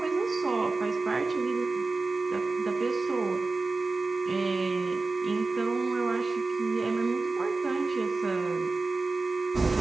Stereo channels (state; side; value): quieter; left; 3.6 dB